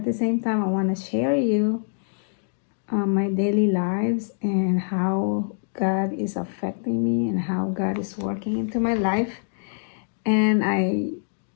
the same time, I want to share you my daily lives and how God is affecting me and how God is working into my life. And I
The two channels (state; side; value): silent; right; digital silence